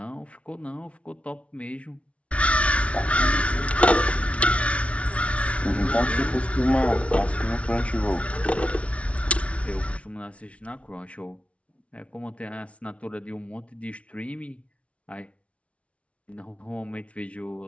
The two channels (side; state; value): right; late; 0.063 ms